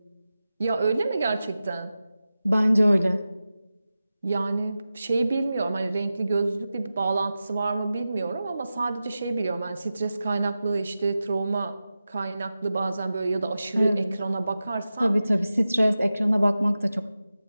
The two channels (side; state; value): both; inverted; correlation -0.94